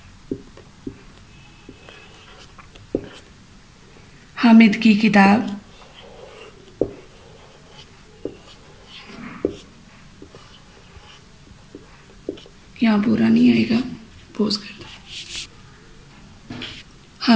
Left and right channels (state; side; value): identical; both; correlation 1.00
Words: हामिद की किताब, यहाँ पूरा नहीं आएगा, पोज कर दो।